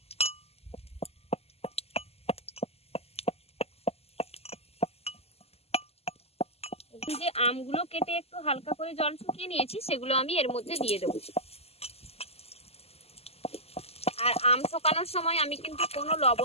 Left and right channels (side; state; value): right; late; 0.29 ms